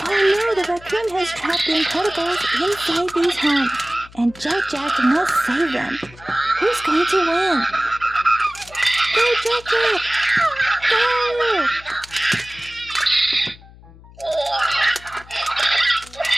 Oh no, the raccoon has trapped the Incredibles inside these homes, and Jack Jack must save them. Who's going to win? Go, Jack Jack! Go!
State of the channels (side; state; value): left; noise; hum, 22 dB below the sound